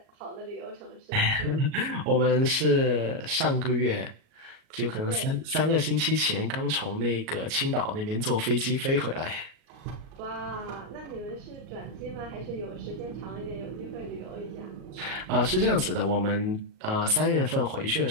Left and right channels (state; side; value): late; left; 37 ms